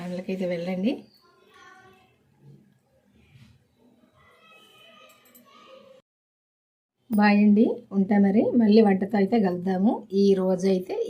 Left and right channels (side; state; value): both; identical; correlation 1.00